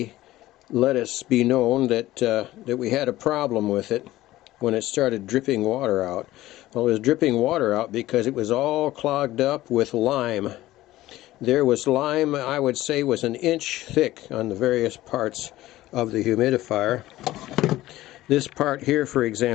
let us be known that we had a problem with it when it started dripping water out. Well, it was dripping water out because it was all clogged up with lime. There was lime, I would say, was an inch thick on the various parts of the humidifier. This part here, for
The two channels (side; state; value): right; quieter; 16.1 dB